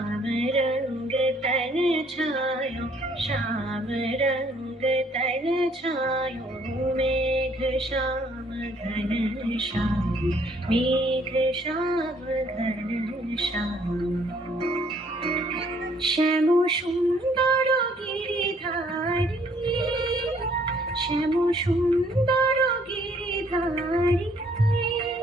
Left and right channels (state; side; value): normal; both; correlation 0.63